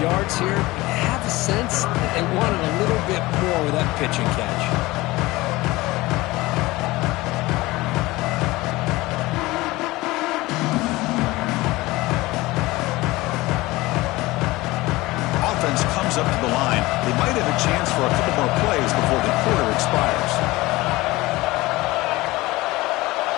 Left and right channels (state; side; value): quieter; right; 20.1 dB